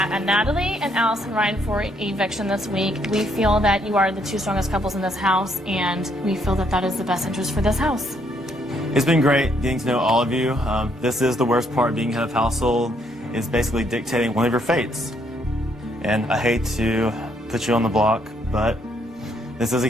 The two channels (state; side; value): normal; both; correlation 0.71